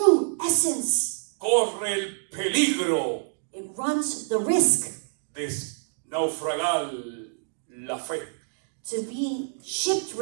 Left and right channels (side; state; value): left; silent; digital silence